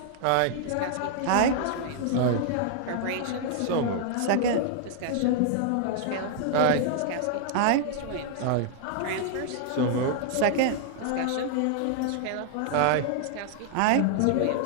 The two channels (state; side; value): different; both; correlation -0.01